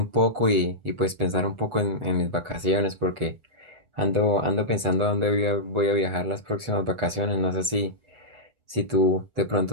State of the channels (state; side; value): late; left; 8.1 ms